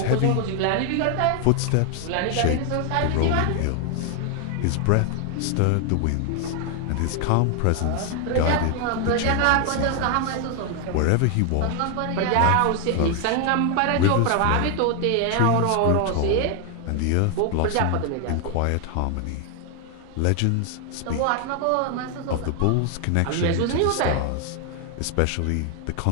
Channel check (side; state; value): both; different; correlation 0.00